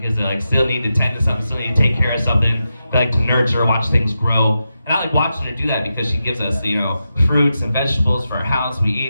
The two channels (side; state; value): both; inverted; correlation -0.88